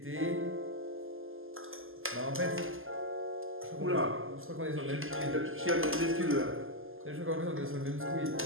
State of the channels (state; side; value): late; left; 0.59 ms